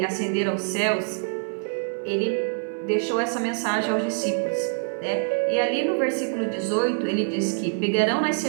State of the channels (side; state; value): left; silent; 62 dB below the other